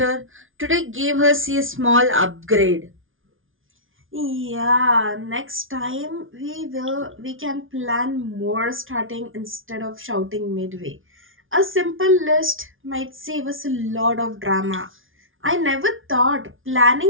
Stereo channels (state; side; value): late; left; 0.58 ms